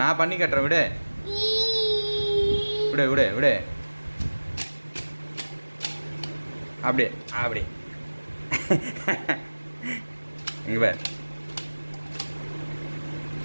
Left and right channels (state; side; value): inverted; both; correlation -1.00